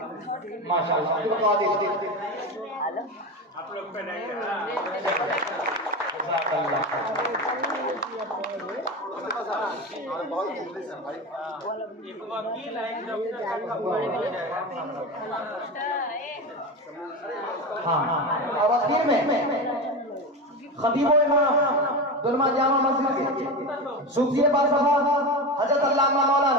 माशाअल्लाह अब्दुल कादिर आप लोग पे नहीं और आखिर में खतीब इमाम दुरमा जामा मस्जिद के सूफी बादशाह हजरत अल्लामा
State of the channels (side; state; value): both; normal; correlation 0.22